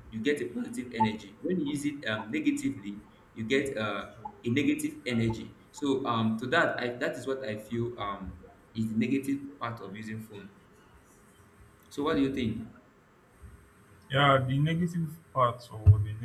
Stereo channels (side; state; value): both; identical; correlation 1.00